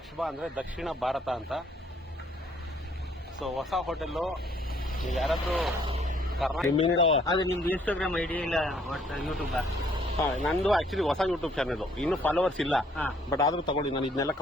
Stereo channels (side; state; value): both; normal; correlation 0.64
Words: ಅಂದರೆ ದಕ್ಷಿಣ ಭಾರತ ಅಂತ. ಸೊ ಹೊಸ ಹೋಟೆಲ್ಲು. ನೀವು ಯಾರಾದರೂ ಅದು ನಿಮ್ದು ಇನ್ಸ್ಟಾಗ್ರಾಮ್ ಐಡಿ ಇಲ್ಲ ಯೂಟ್ಯೂಬ್? ನಂದು ಆಕ್ಚುಲಿ ಹೊಸ ಯೂಟ್ಯೂಬ್ ಚಾನಲ್, ಇನ್ನೂ ಫಾಲೋವರ್ಸ್ ಇಲ್ಲ. ಬಟ್ ಆದ್ರೂ ತಗೊಳ್ಳಿ, ನಾನು ಇದನ್ನೆಲ್ಲ